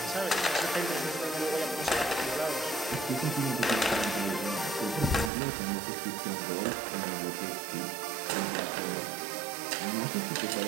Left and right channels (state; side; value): drops out; left; at 5.3 s